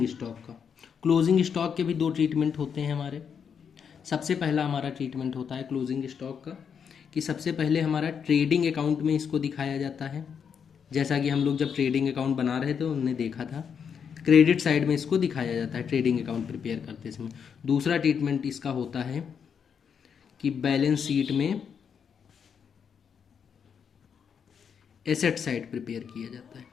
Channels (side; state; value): right; quieter; 7.1 dB